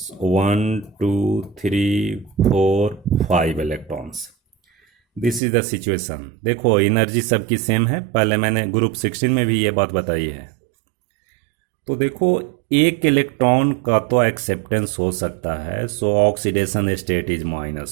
1 2 3 4 5 electrons, this is the situation. देखो एनर्जी सबकी सेम है, पहले मैंने ग्रुप 16 में भी ये बात बताई है। तो देखो एक इलेक्ट्रॉन का तो एक्सेप्टेंस हो सकता है, सो ऑक्सीडेशन स्टेट इज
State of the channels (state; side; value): drops out; left; at 5.4 s